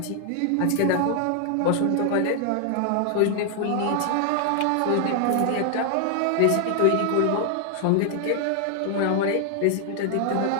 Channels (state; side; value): different; both; correlation 0.00